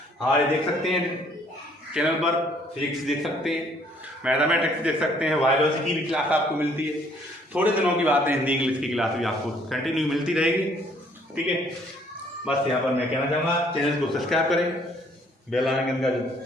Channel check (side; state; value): both; normal; correlation 0.62